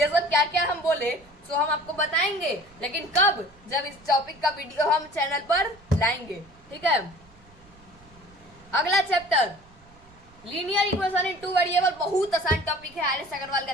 सब क्या क्या हम बोले तो हम आपको बताएंगे, लेकिन कब, जब इस टॉपिक का वीडियो हम चैनल पर लाएंगे, ठीक है। अगला चैप्टर लीनियर इक्वेशन इन 2 वेरिएबल, बहुत आसान टॉपिक है, आर एस अग्रवाल का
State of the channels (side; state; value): right; noise; rumble, 27 dB below the sound